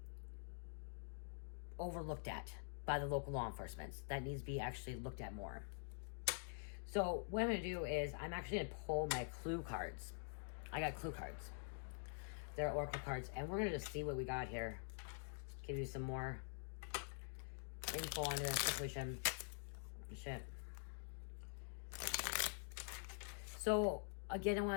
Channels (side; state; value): right; silent; digital silence